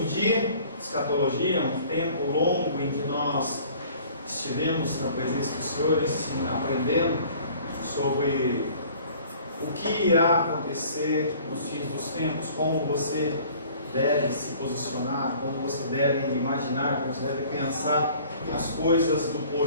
dia de escatologia, um tempo longo em que nós estivemos na presença do Senhor, aprendendo sobre o que irá acontecer nos fins dos tempos, como você deve se posicionar, como você deve imaginar, como você deve pensar as coisas do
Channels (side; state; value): both; inverted; correlation -0.51